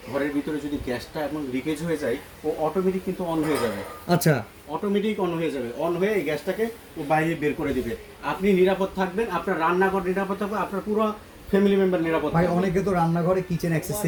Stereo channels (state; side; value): identical; both; correlation 1.00